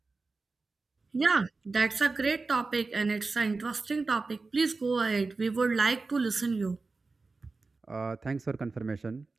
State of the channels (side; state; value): left; quieter; 3.9 dB